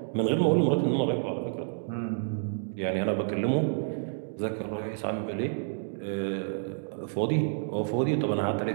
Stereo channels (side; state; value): left; silent; digital silence